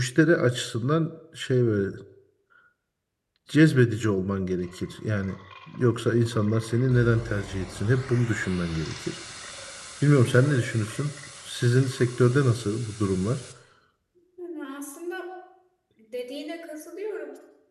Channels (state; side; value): identical; both; correlation 1.00